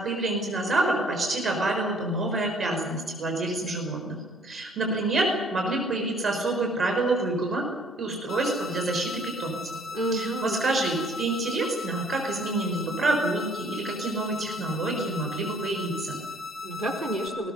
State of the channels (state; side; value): normal; both; correlation 0.58